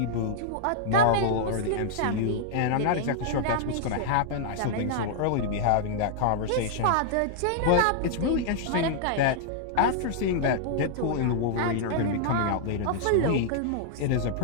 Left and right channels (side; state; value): both; different; correlation -0.01